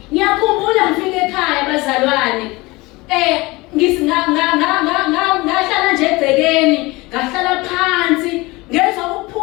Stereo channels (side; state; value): right; quieter; 22.5 dB